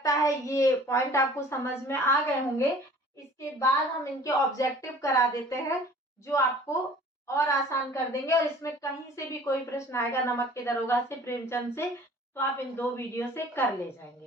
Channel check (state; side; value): normal; both; correlation 0.49